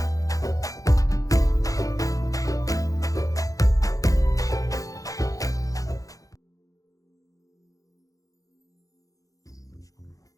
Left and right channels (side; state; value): right; late; 0.17 ms